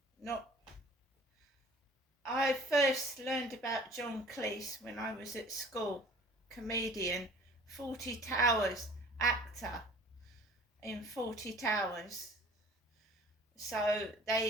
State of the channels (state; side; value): normal; both; correlation 0.49